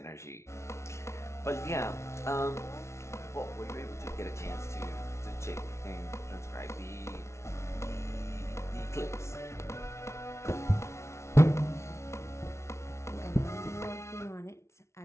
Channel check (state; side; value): late; right; 0.13 ms